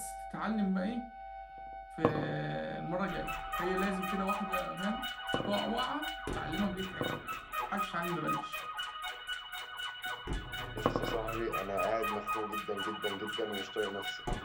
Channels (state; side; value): identical; both; correlation 1.00